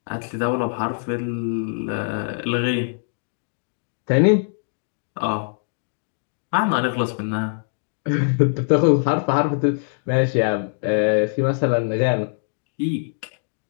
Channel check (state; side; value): silent; right; digital silence